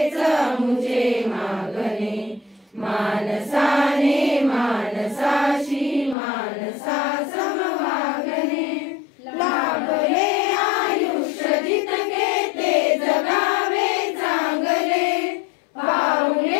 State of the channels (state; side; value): drops out; right; at 6.2 s